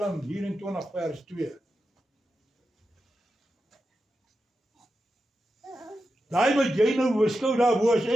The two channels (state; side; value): normal; both; correlation 0.89